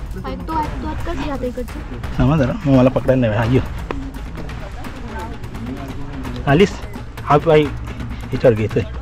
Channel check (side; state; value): both; identical; correlation 1.00